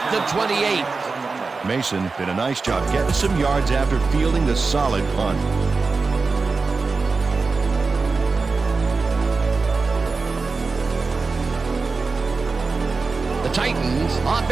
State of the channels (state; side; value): quieter; left; 4.2 dB